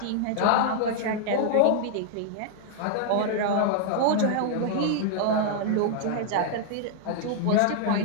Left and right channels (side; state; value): both; different; correlation -0.01